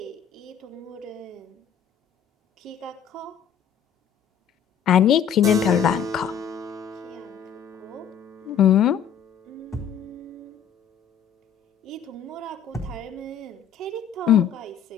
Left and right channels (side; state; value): right; quieter; 7.9 dB